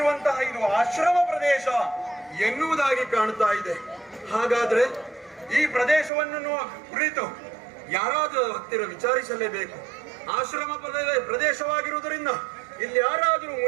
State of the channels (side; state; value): left; drops out; at 6.1 s